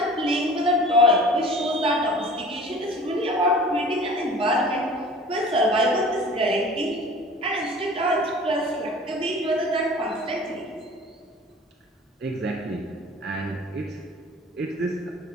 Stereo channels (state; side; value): normal; both; correlation 0.44